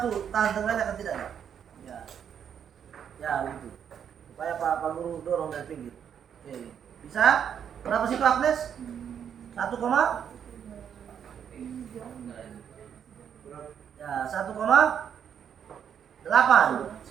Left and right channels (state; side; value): quieter; left; 8.3 dB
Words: tahan tengahnya kan tidak? Ya. Ya, begitu. Supaya Pak Guru dorong dari pinggir. Oke. Bisa? Berapa sih Pak Agnes? 1, ya